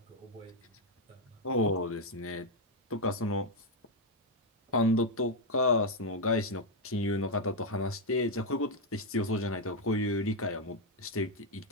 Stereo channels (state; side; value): normal; both; correlation 0.01